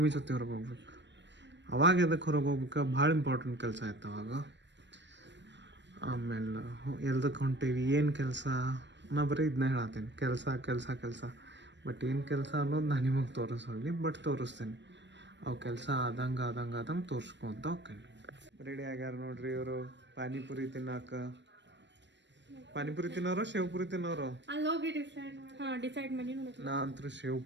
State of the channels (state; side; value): late; left; 0.52 ms